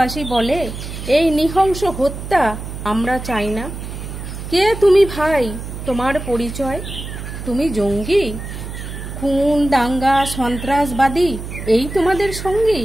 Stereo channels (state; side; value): noise; right; hum, 9 dB below the sound